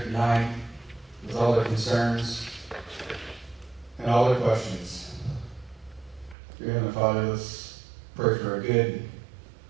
tonight with all their concerns and all their questions. Dear Heavenly Father, let's pray for a good,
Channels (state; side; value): drops out; left; at 6.4 s